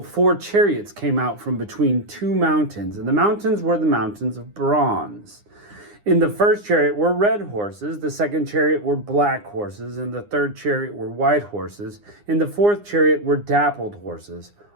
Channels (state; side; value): late; left; 9.8 ms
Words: 4 chariots came out from between 2 mountains, and the mountains were the mountains of bronze. In the first chariot were red horses, the second chariot were black horses, and the third chariot were white horses. In the fourth chariot were dappled horses,